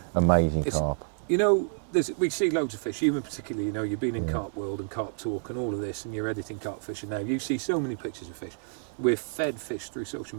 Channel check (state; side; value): silent; left; 59 dB below the other